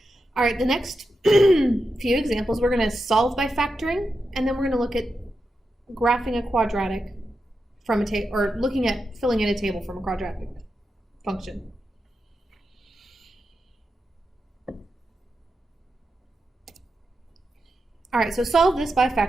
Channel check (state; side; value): normal; both; correlation 0.88